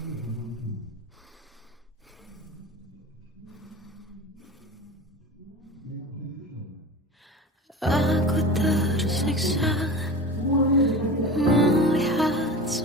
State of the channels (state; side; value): normal; both; correlation 0.32